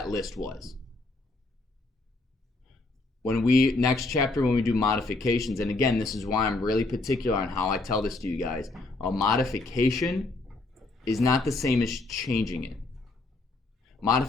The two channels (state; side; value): quieter; right; 3.2 dB